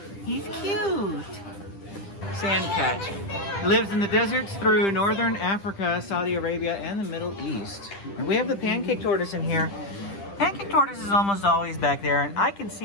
he's cute. Sand cat. Lives in the deserts through northern Africa, Saudi Arabia, and the Middle East. And we have the Pancake Tortoise in here. Pancake Tortoise is almost always back there, and I can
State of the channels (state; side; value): late; right; 10 ms